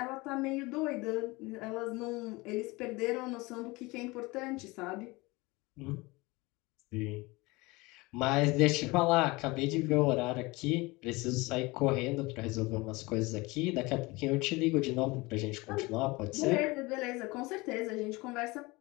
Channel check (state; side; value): quieter; right; 23.3 dB